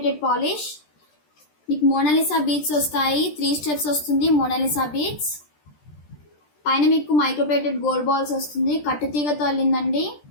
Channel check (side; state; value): right; late; 13 ms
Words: పాలిష్. మీకు మోనాలిసా బీడ్స్ వస్తాయి. 3 స్టెప్స్ వస్తుంది మోనాలిసా బీడ్స్. పైన మీకు మైక్రోప్లేటెడ్ గోల్డ్ బాల్స్ వస్తుంది. కట్టు తీగతో అల్లిందండి.